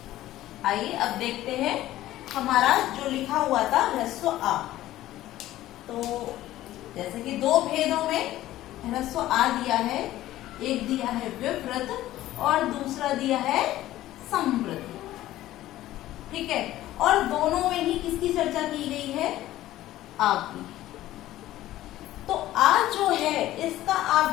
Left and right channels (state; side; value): quieter; right; 14.8 dB